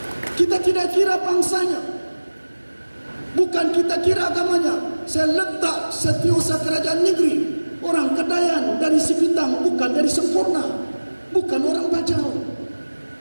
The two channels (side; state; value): both; inverted; correlation -1.00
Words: Kita tidak kira bangsanya, bukan kita kira agamanya. Saya letak Setiausaha Kerajaan Negeri, orang Kedayan dari Sipitang, bukan dari Sempurna, bukan orang Bajau.